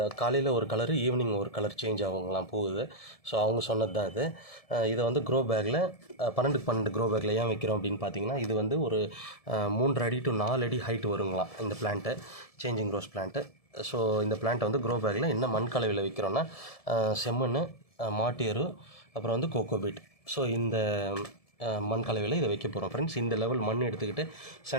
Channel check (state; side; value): late; right; 1.7 ms